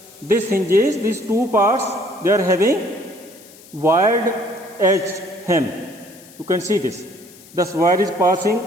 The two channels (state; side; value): noise; left; hiss, 22 dB below the sound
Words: this hinges, these two parts, they are having wide edge hem. You can see this. The wire is passing